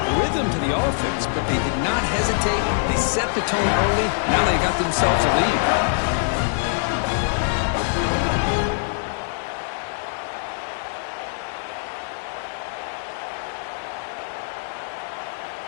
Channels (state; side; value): silent; right; digital silence